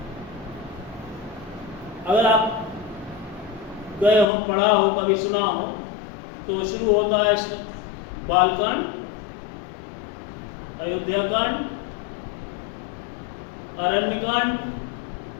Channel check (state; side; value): drops out; right; at 4.2 s